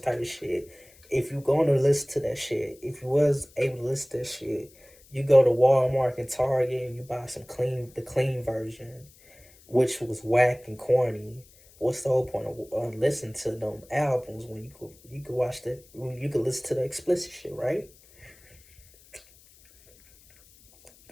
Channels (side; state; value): left; noise; hiss, 26 dB below the sound